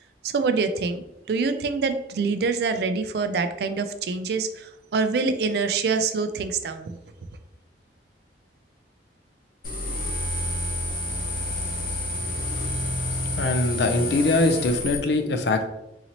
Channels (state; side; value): normal; both; correlation 0.35